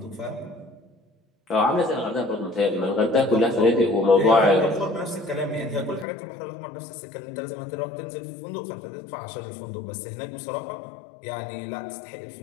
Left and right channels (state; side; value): drops out; right; at 6.1 s